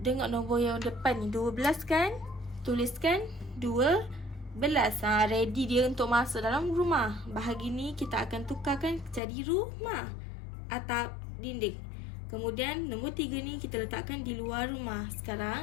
nombor yang depan ni, 12 kan? Tuliskan 12. Ready dia untuk masuk dalam rumah. Bahagi ni kita akan tukarkan jadi rumah. Atap, dinding. Kemudian nombor 3 ni kita letakkan di luar rumah.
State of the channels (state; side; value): drops out; right; at 9.2 s